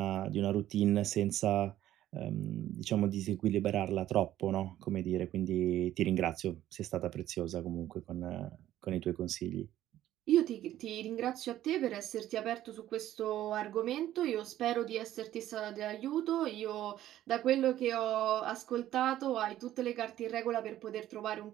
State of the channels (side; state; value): left; quieter; 13.1 dB